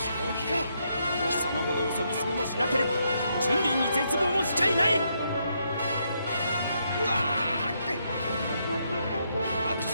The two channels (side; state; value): both; inverted; correlation -0.77